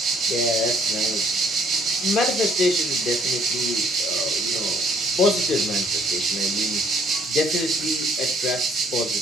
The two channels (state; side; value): normal; both; correlation 0.62